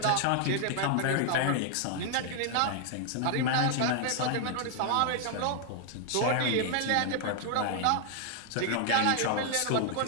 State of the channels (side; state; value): both; different; correlation 0.00